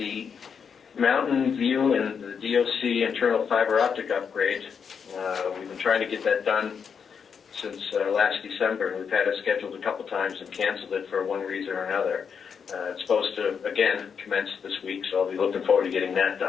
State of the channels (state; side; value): quieter; right; 6.6 dB